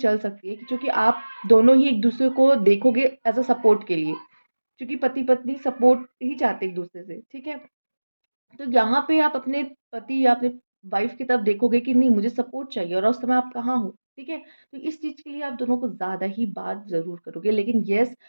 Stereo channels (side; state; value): both; inverted; correlation -1.00